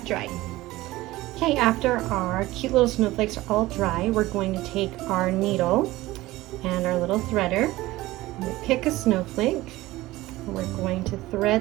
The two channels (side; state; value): left; quieter; 18.0 dB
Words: dry. Okay, after our cute little snowflakes are all dry, we're going to take our needle and our little threader. I'm going to pick a snowflake, and we're going to